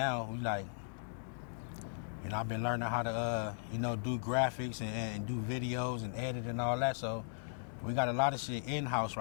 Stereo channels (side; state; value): right; silent; digital silence